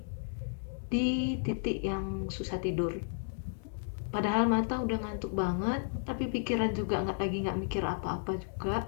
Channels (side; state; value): right; silent; digital silence